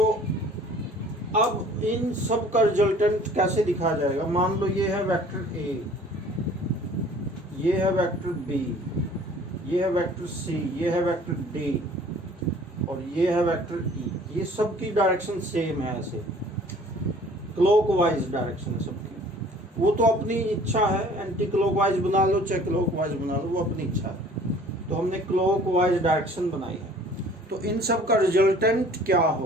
अब इन सब का रिजल्टेंट कैसे दिखाया जाएगा। मान लो ये है वेक्टर ए, ये है वेक्टर बी, ये है वेक्टर सी, ये है वेक्टर डी और ये है वेक्टर ई। ये सब की डायरेक्शन सेम है, ऐसे क्लॉकवाइज डायरेक्शन है सबकी। वो तो अपनी इच्छा है, एंटी क्लॉकवाइज बना लो चाहे क्लॉकवाइज बना लो, वो अपनी इच्छा है। तो हमने क्लॉकवाइज डायरेक्शन बनाई है। तो इन सब का रिजल्टेंट क्या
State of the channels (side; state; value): both; normal; correlation 0.51